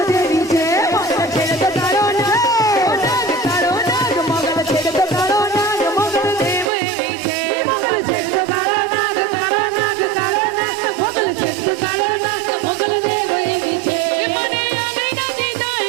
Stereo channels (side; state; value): left; drops out; at 6.7 s